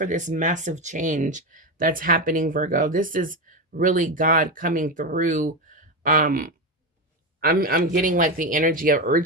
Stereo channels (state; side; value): normal; both; correlation 0.14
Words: this massive change that's happening, Virgo. This is really God coming through. I'm getting like the energy of